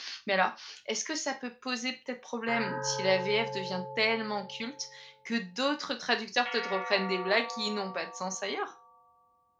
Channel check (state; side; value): identical; both; correlation 1.00